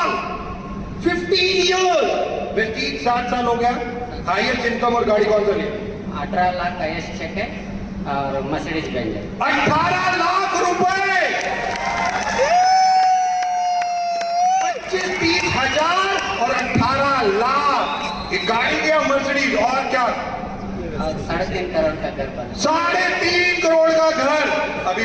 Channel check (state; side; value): identical; both; correlation 1.00